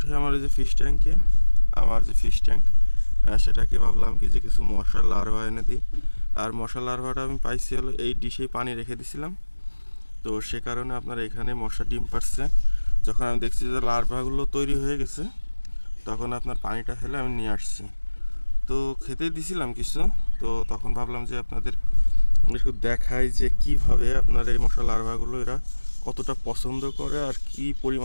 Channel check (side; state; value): both; inverted; correlation -1.00